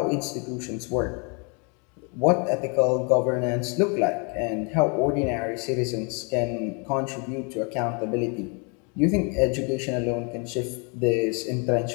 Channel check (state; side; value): quieter; right; 35.0 dB